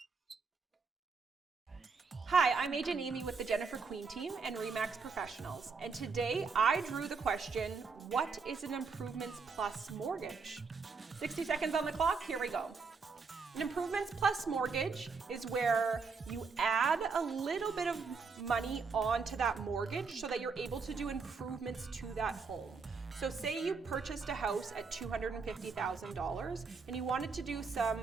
Hi, I'm Agent Amy with the Jennifer Queen team and RE/MAX Professionals, and today I drew the question, what is an improvements plus mortgage? 60 seconds on the clock, here we go. An improvements plus mortgage is where you add a little bit of money onto that mortgage so that you're able to do improvements to that home. So say you purchased a house at $250,000 and you wanted to do some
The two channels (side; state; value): left; quieter; 4.9 dB